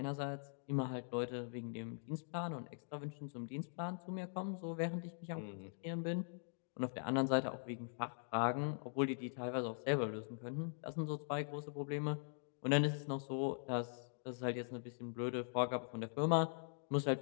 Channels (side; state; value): right; silent; digital silence